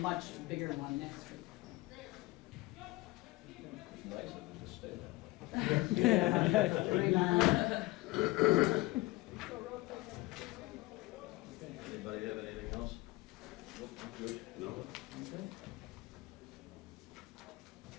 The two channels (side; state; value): right; quieter; 20.9 dB